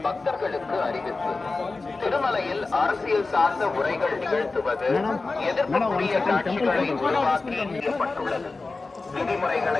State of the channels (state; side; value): quieter; right; 3.7 dB